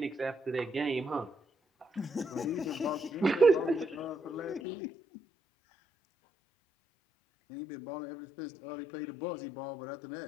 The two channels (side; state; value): right; drops out; at 4.6 s